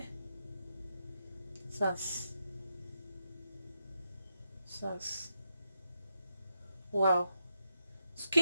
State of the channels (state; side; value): inverted; both; correlation -0.84